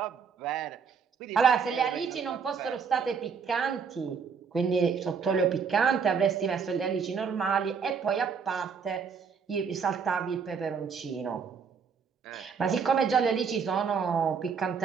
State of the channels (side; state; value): left; quieter; 6.1 dB